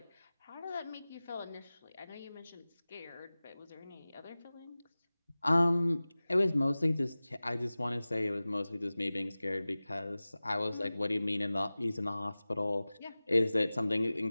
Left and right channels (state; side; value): inverted; both; correlation -0.98